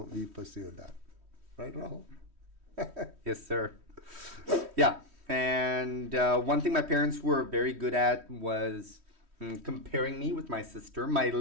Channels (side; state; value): left; late; 3.1 ms